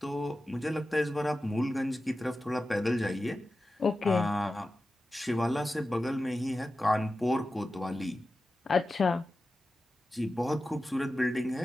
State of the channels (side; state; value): both; normal; correlation 0.94